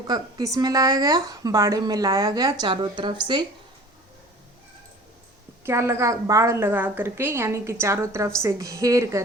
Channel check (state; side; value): normal; both; correlation 0.43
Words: किस में लाया गया? बाड़े में लाया गया। चारों तरफ से बाड़ लगा करके, यानी कि चारों तरफ से घेर